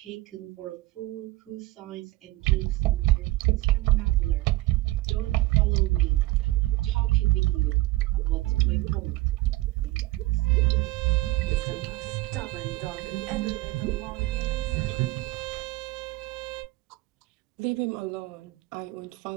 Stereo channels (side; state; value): left; quieter; 19.3 dB